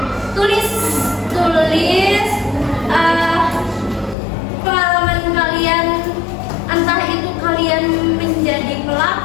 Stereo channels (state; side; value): drops out; right; at 4.2 s